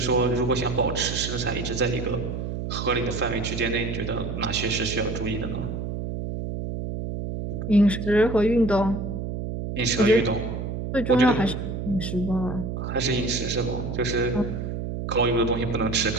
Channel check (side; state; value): right; noise; hum, 4 dB below the sound